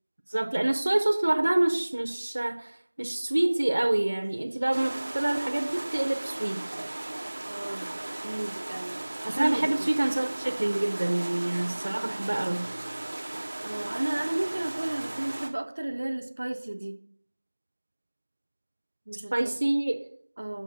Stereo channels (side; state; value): both; inverted; correlation -1.00